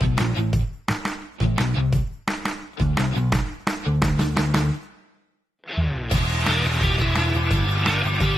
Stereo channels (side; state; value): both; normal; correlation 0.90